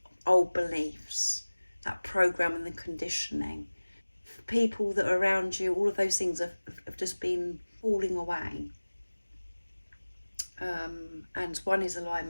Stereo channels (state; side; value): inverted; both; correlation -1.00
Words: Old beliefs, that program and the conditioning, people that are around you, all of those things have just been falling away. And 1 is